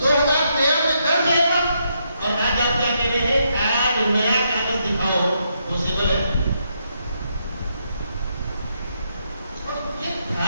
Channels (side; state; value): both; inverted; correlation -0.78